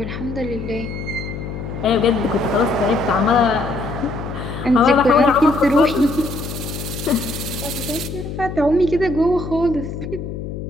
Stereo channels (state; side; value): noise; left; hum, 7 dB below the sound